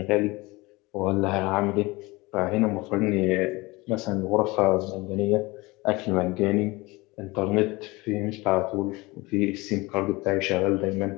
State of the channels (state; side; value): quieter; right; 22.9 dB